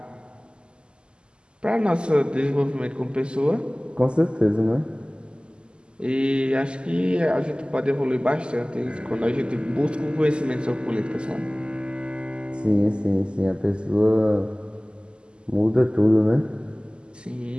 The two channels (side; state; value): left; late; 0.049 ms